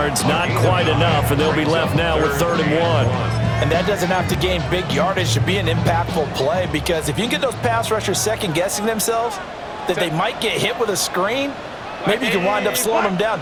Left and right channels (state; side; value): identical; both; correlation 1.00